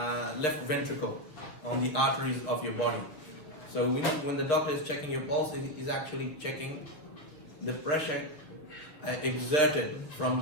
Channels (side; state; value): right; late; 7.0 ms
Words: left ventricle on the arteries of your body. So when the doctor is checking your pulse, he's actually checking the pressure exerted from